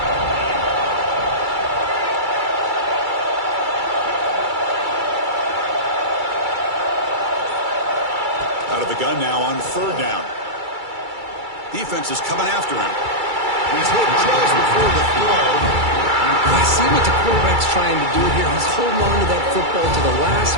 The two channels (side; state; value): left; late; 2.3 ms